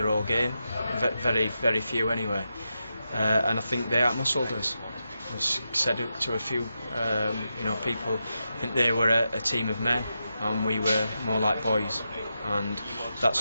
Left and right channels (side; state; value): both; inverted; correlation -0.87